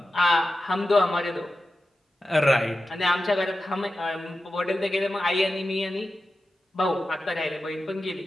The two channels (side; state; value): both; normal; correlation 0.92